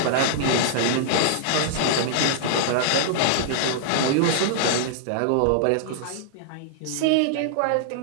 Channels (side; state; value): both; different; correlation -0.01